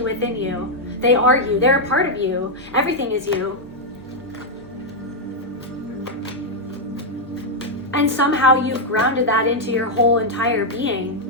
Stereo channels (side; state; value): both; normal; correlation -0.02